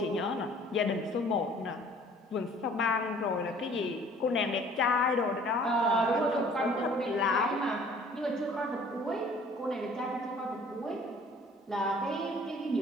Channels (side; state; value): both; normal; correlation 0.53